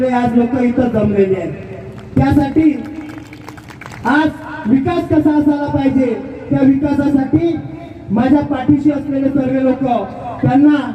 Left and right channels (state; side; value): identical; both; correlation 1.00